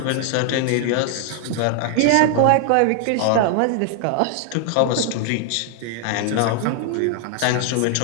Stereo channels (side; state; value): both; different; correlation 0.00